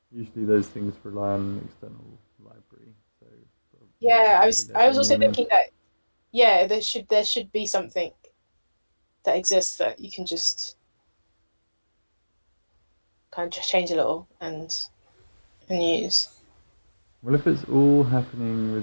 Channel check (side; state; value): both; inverted; correlation -1.00